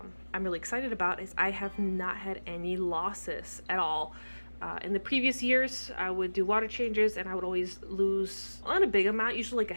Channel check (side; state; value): both; inverted; correlation -1.00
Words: really excited about is I have not had any losses at all. In the previous years, I would do water changes and I would always lose not a big amount, usually like a